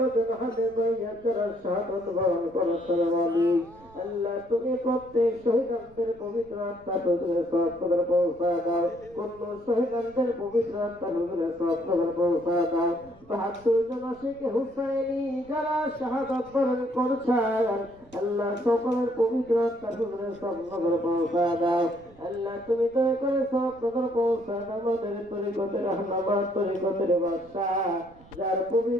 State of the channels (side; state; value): right; noise; rumble, 25 dB below the sound